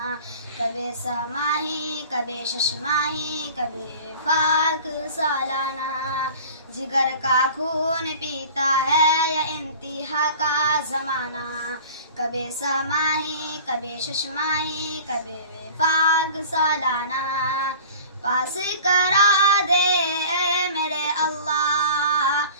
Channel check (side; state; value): both; inverted; correlation -0.43